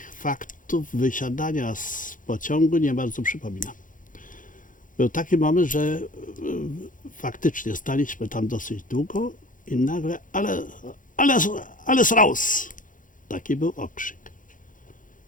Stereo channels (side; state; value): right; late; 0.38 ms